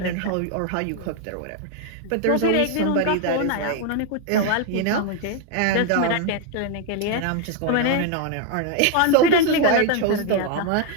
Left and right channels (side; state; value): both; different; correlation 0.01